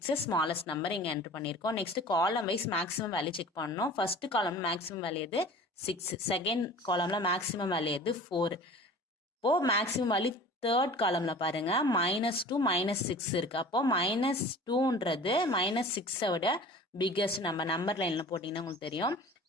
ஸ்மாலஸ்ட் நம்பர் இங்கே என்ட்ரு பண்ணியிருக்கோம். Next column wise maximum value check பண்ணணும். ஃபர்ஸ்ட் காலம் மேக்ஸிமம் வேல்யூ எது 6, செகண்ட் காலம்ல மேக்ஸிமம் வேல்யூ எது 4. இப்போ மேக்ஸிமம் வேல்யூ தேர்ட் காலம்ல பாருங்க -2 -6 இருக்கு. அப்போ -2ன்றது -6 விட பிக்கஸ்ட் நம்பர் லைன்ல போட்டீங்கன்னா உங்களுக்கு தெரியும்.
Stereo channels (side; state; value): both; normal; correlation 0.42